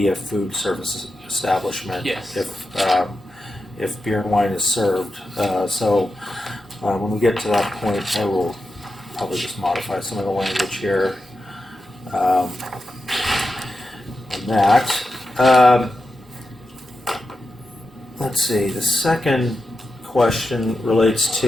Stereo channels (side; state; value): both; normal; correlation 0.89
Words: a food service establishment. Yes. If beer and wine is served. So when we get to that point, I will probably just modify some of the language here. on that. Let's see, the second question relates